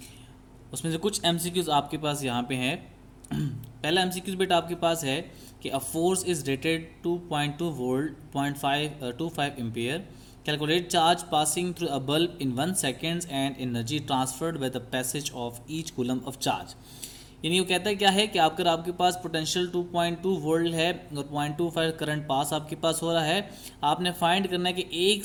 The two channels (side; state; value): both; identical; correlation 1.00